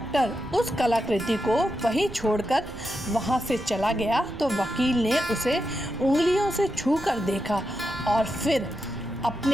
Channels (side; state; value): right; noise; rumble, 14 dB below the sound